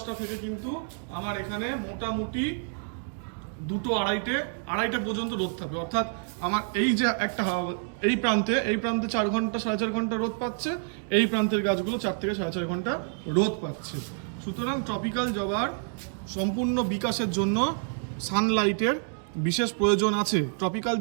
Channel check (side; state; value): left; silent; 55 dB below the other